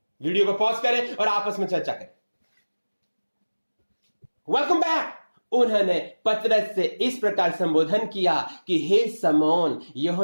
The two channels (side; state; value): both; inverted; correlation -1.00